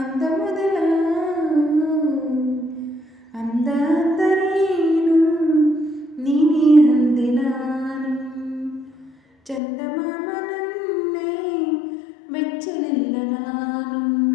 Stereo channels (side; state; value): right; drops out; at 9.6 s